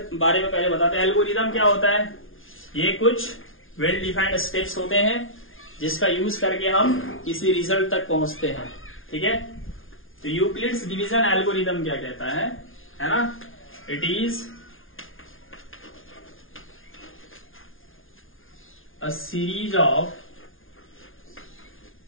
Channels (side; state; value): right; late; 0.59 ms